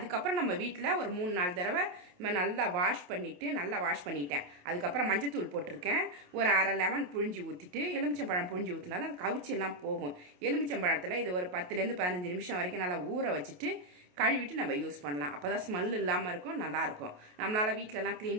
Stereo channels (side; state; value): left; late; 28 ms